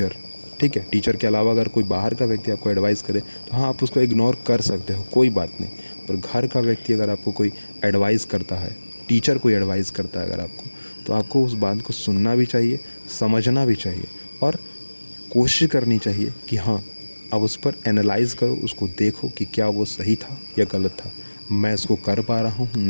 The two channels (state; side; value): inverted; both; correlation -1.00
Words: ठीक है, टीचर के अलावा अगर कोई बाहर का व्यक्ति आपको एडवाइस करे तो हाँ आप उसको इग्नोर कर सकते हो, कोई बात नहीं। पर घर का व्यक्ति अगर आपको कोई एडवाइस करता है, टीचर कोई एडवाइस करता है अगर आपको, तो आपको उस बात को सुनना भी चाहिए, समझना भी चाहिए और कोशिश करनी चाहिए कि हाँ अब उस पर एनालाइज़ करो, उसको देखो कि क्या वो सही था या गलत था, मैं इसको कर पा रहा हूँ